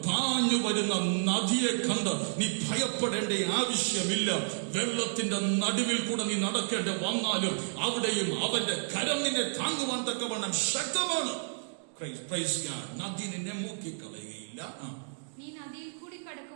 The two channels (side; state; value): left; silent; digital silence